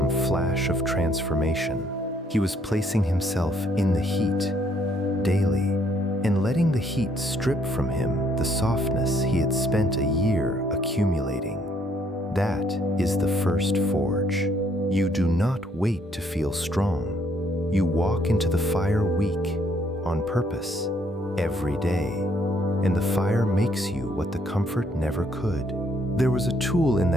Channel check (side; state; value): both; normal; correlation 0.67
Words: flash of transformation. He was placing himself in the heat, daily, and letting the heat strip from him the softness he had spent a year accumulating. That is the first forge. You do not wait to feel strong. You walk into the fire weak, on purpose, every day, and the fire makes you what the comfort never could. There was a tool in